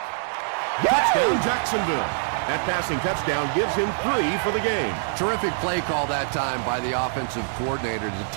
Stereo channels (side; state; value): left; silent; digital silence